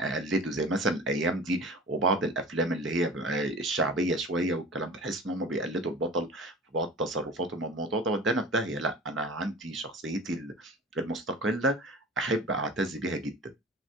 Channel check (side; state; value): both; normal; correlation 0.39